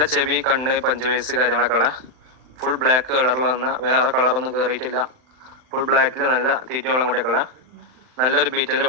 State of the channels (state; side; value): late; left; 39 ms